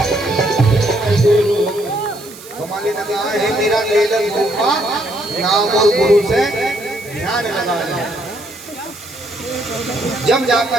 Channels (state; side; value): noise; right; hiss, 18 dB below the sound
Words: कमाली लगा है, मेरा ले गुरु का नाम और गुरु से ध्यान लगा है। जब